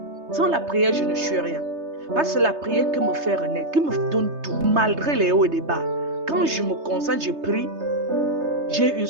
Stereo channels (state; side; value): late; left; 3.3 ms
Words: sans la prière, je ne suis rien. Parce que c'est la prière qui me fait renaître, qui me donne tout, malgré les hauts et les bas. Quand je me concentre, je prie, j'ai une